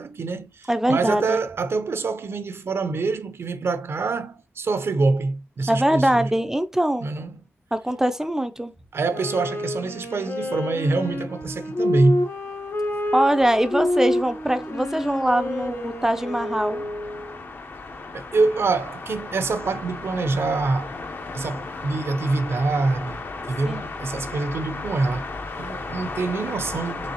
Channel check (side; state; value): both; normal; correlation 0.90